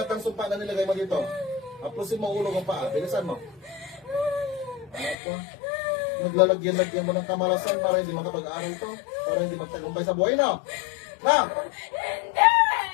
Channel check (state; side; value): drops out; right; at 5.2 s